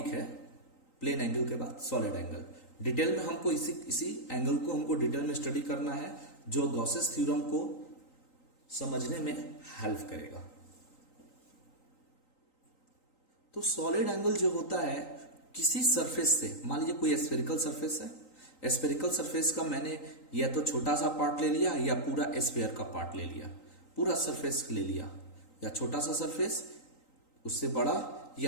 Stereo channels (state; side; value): late; right; 3.9 ms